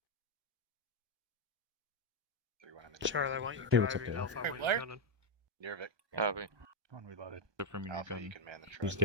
3-1 in the Charlie, I want you Hey, what's up, driving. Dave? Alpha, I want you Where? gunning. Nirvik. Copy. One reloaded. From your Alpha, gun. you can man the truck. Just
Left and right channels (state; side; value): late; left; 1.2 ms